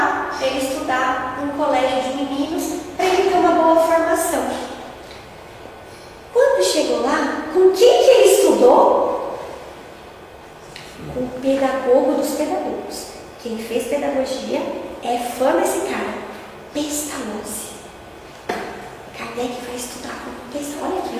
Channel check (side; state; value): both; identical; correlation 1.00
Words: para ele estudar num colégio de meninos, para ele ter uma boa formação. Quando chegou lá, com quem que ele estudou? Com o pedagogo dos pedagogos. Quem fez pedagogia é fã desse cara, Pestalozzi. Kardec vai estudar com o Pestalozzi. Olha que